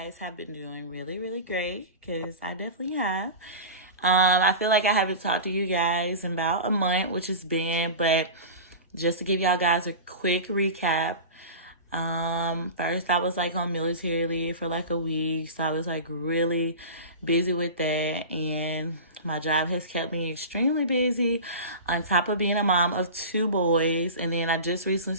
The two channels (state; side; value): inverted; both; correlation -0.31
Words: have been doing really, really great, because I definitely have. I feel like I haven't talked to you guys in about a month, which has been, but just to give y'all guys a quick recap. First I was like on military leave for like a week, so I was like really busy with that, and my job has kept me extremely busy on top of being a mom of 2 boys. And then I just recently